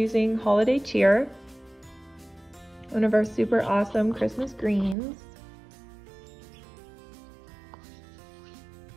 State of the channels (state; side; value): drops out; left; at 5.0 s